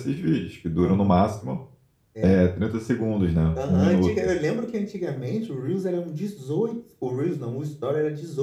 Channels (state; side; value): identical; both; correlation 1.00